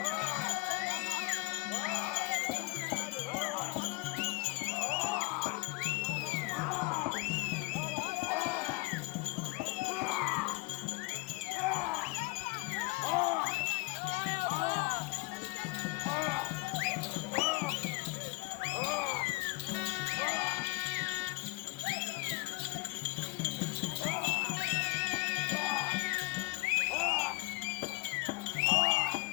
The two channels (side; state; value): right; quieter; 24.8 dB